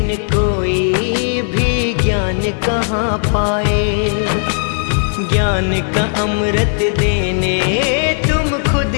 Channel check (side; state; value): right; silent; digital silence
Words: कोई भी ज्ञान कहाँ पाए, ज्ञान का अमृत देने तुम खुद